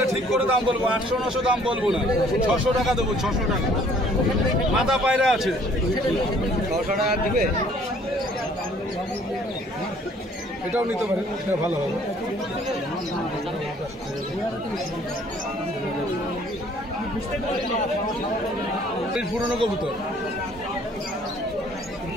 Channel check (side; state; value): both; normal; correlation 0.58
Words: ঠিক করে দাম বলবো, 800-900 দাম বলবো না, 600 টাকা দেবো, 600 টাকা। মাথা পায়রা আছে, 600 টাকা দিবে। এটাও নিতে পারেন, এটা ভালো হবে। পুরনো কবুতর